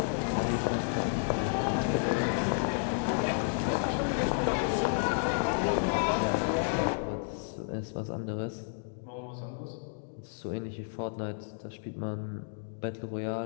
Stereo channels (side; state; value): right; silent; digital silence